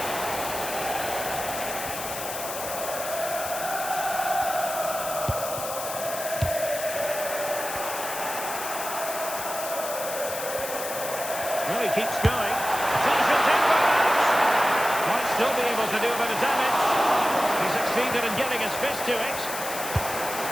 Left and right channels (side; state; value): left; noise; hiss, 7 dB below the sound